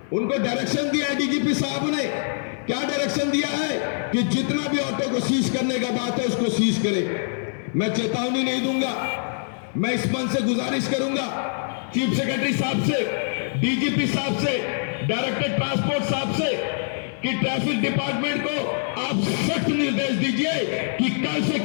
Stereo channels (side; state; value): right; silent; 55 dB below the other